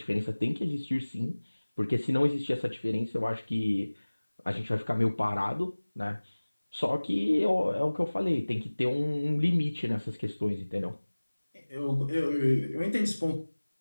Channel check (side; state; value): both; inverted; correlation -1.00